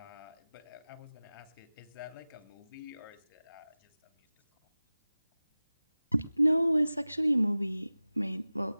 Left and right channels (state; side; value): inverted; both; correlation -0.98